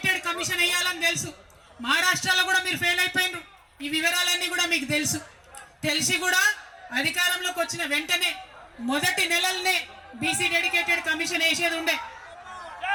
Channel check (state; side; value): identical; both; correlation 1.00